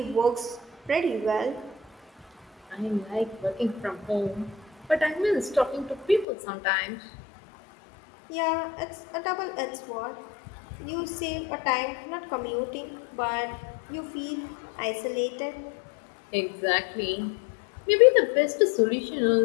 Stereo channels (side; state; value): right; drops out; at 6.2 s